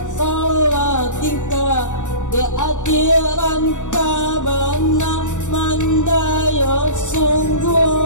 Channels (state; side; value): late; right; 0.85 ms